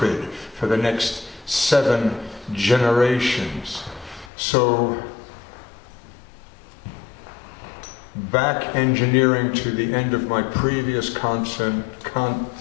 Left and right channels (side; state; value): right; drops out; at 4.3 s